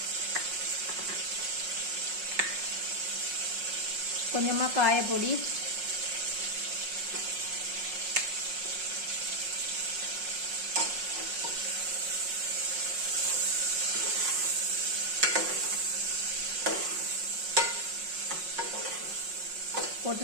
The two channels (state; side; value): late; left; 5.5 ms